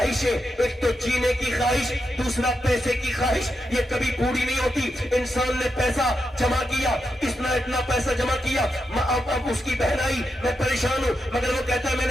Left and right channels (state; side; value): normal; both; correlation 0.85